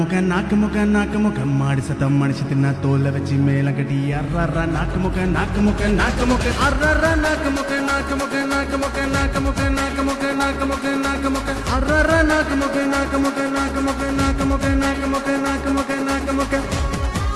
நாக்கு முக்க நாக்கு முக்க மாடு சத்தம் மடிச்சு தின்ன தோலை வச்சு மேல கட்டி அர்றாரா நாக்கு முக்க நாக்கு முக்க நாக்கு முக்க அர்றாரா நாக்கு முக்க நாக்கு முக்க நாக்கு முக்க நாக்கு முக்க நாக்கு முக்க நாக்கு முக்க நாக்கு முக்க அர்றாரா நாக்கு முக்க நாக்கு முக்க நாக்கு முக்க நாக்கு முக்க நாக்கு முக்க நாக்கு முக்க நாக்கு முக்க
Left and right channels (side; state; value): both; identical; correlation 1.00